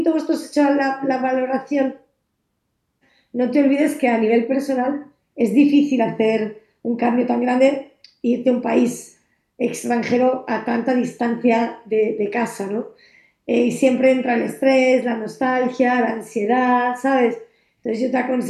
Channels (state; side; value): identical; both; correlation 1.00